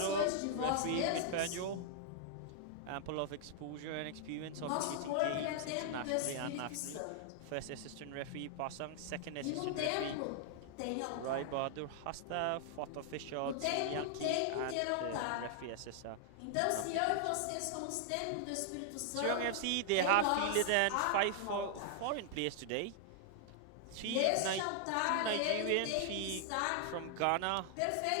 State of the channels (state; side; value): different; both; correlation 0.00